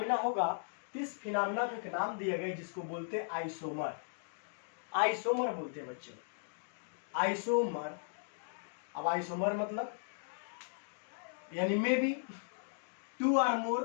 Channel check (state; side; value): silent; right; digital silence